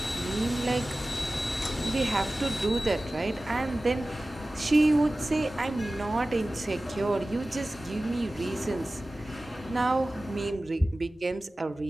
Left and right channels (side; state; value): both; normal; correlation 0.97